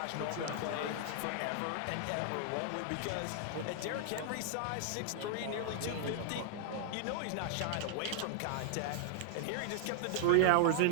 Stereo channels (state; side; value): different; both; correlation 0.00